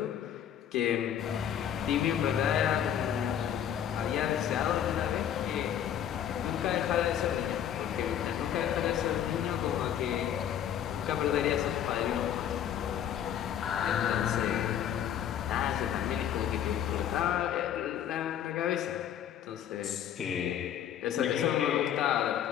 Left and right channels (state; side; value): quieter; right; 9.9 dB